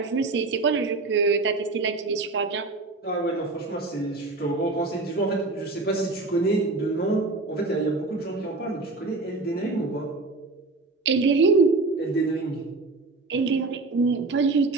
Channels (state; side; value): quieter; left; 3.5 dB